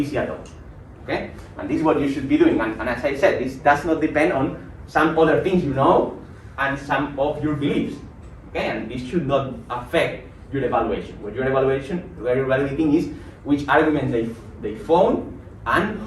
at all. Okay, and this is what you should be doing. And as I said, this does not depend on some other things you know and some of your beliefs. Okay, and this should not affect your evaluation. What you're evaluating is which arguments they found and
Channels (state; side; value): identical; both; correlation 1.00